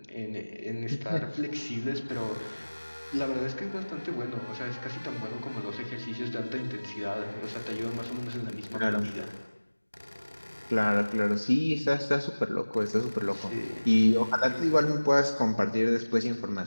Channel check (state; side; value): inverted; both; correlation -1.00